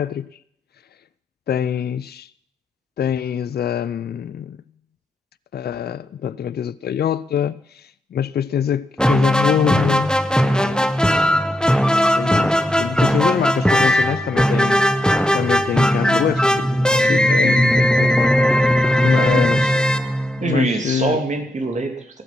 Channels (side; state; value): both; normal; correlation 0.82